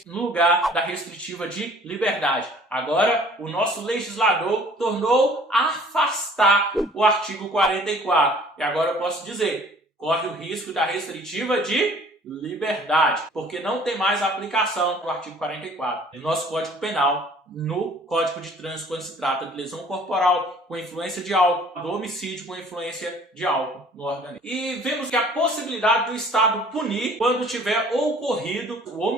no lugar da restritiva de liberdade. Agora, o nosso legislador tornou a afastar o artigo 44. E agora eu posso dizer, corre o risco da restritiva de liberdade, porque não tem mais a aplicação do artigo 44 no nosso Código Penal, no Código de Trânsito, quando se trata de lesão corporal com influência de álcool, do homicídio com influência de álcool no organismo. E vemos que a possibilidade do Estado punir quando tiver ocorrido o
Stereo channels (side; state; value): both; normal; correlation 0.53